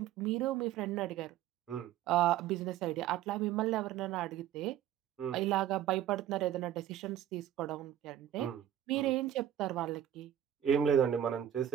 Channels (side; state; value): left; quieter; 11.2 dB